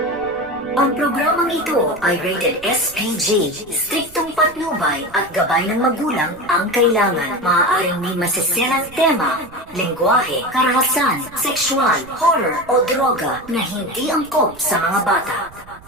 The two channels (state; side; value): noise; right; rumble, 22 dB below the sound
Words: Ang programang ito ay rated SPG. Striktong patnubay at gabay ng magulang ang kailangan. Maaaring may masiselang tema, lengguwahe, karahasan, sexual, horror o droga na hindi angkop sa mga bata.